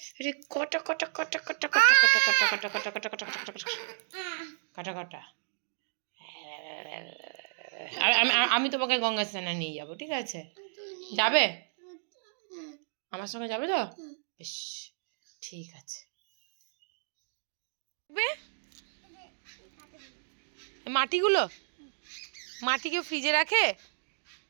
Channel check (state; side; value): silent; left; digital silence